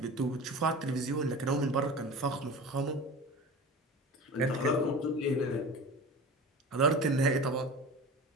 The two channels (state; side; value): normal; both; correlation 0.33